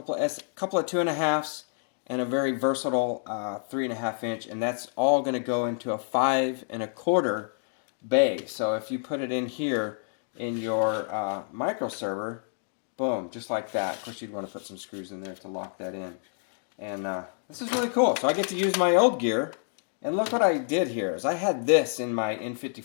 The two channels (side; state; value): right; silent; digital silence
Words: of 2.5s and a very versatile 3.5-inch, and that's all going to go into a 5.25 bay. So if you put it in here in your microserver, boom, just like that. Of course, you'd want to put some screws in there to lock that in. And this is really cool. So I get to use my old gear. And look what I did here. Is I had this in my